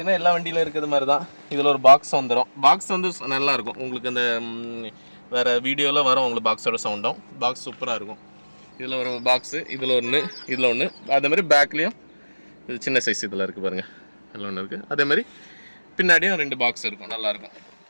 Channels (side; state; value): both; inverted; correlation -1.00